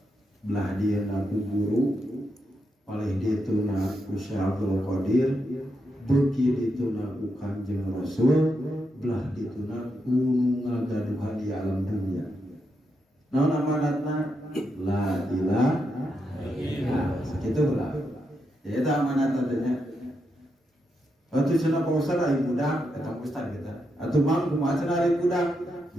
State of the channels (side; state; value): both; normal; correlation 0.83